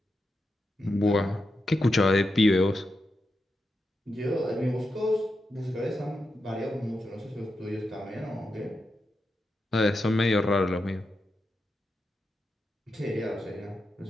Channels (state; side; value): normal; both; correlation 0.87